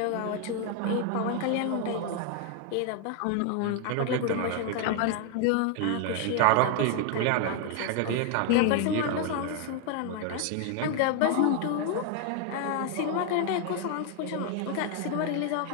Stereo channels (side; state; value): both; different; correlation 0.00